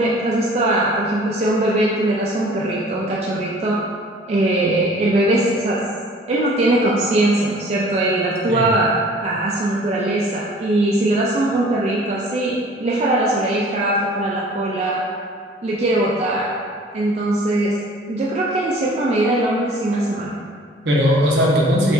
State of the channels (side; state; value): both; normal; correlation 0.50